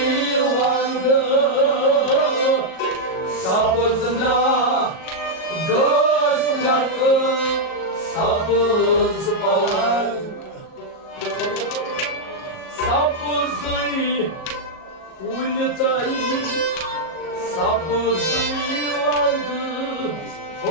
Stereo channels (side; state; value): right; late; 38 ms